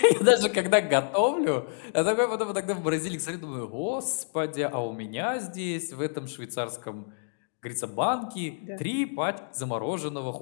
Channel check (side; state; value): right; silent; digital silence